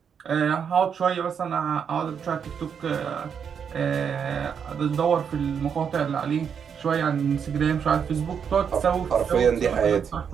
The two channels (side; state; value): left; quieter; 7.2 dB